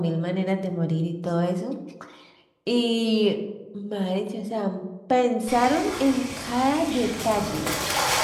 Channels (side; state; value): both; identical; correlation 1.00